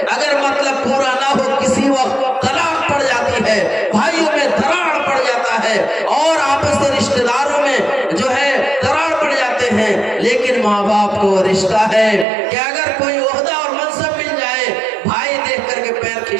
اگر مطلب پورا نہ ہو کسی وقت طلاق پڑ جاتی ہے، بھائیوں میں دراڑ پڑ جاتا ہے اور آپس کے رشتہ داروں میں جو ہے دراڑ پڑ جاتے ہیں۔ لیکن ماں باپ کو رشتہ ہے کہ اگر کوئی عہدہ اور منصب مل جائے، بھائی دیکھ کر کے پیر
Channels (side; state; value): left; drops out; at 12.2 s